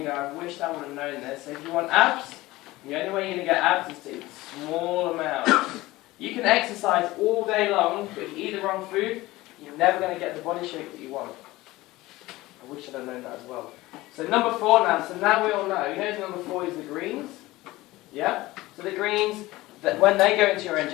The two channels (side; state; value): right; quieter; 18.8 dB